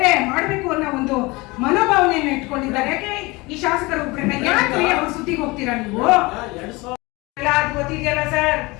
ಮಾಡ್ಬೇಕು ಅನ್ನೋ ಒಂದು ಮನೋಭಾವನೆಯನ್ನ ಇಟ್ಕೊಂಡಿದ್ದಾರೆ. ಯಾಕೆ ಈ ಶಾಸಕರು ಯಾಕೆ ಅವ್ರ ಸುದ್ದಿಗೆ ಹೋಗ್ತೀರಾ ನೀವು? ಗೊತ್ತಿದೆಯಲ್ಲ ಸರ್,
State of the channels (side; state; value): right; quieter; 23.7 dB